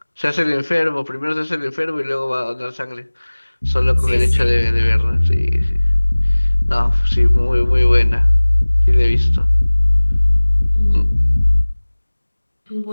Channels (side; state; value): both; inverted; correlation -1.00